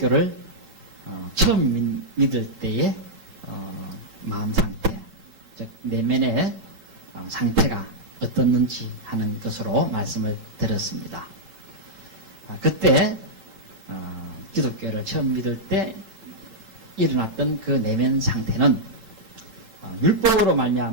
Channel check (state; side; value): late; left; 9.0 ms